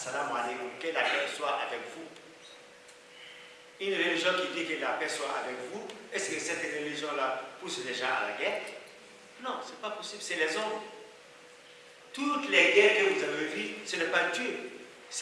alaikum, que la paix soit avec vous. Une religion qui dit que la paix soit avec vous, est-ce que cette religion-là pousse les gens à la guerre? Non, ce n'est pas possible, c'est les hommes. Toutes les guerres que vous avez vues, ce n'est pas Dieu,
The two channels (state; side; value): identical; both; correlation 1.00